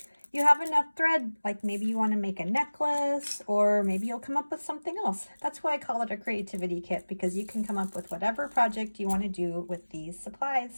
You have enough thread, like maybe you want to make a necklace, or maybe you'll come up with something else. That's why I call it a creativity kit, because you can come up with whatever project you want to do with these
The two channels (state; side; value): inverted; both; correlation -1.00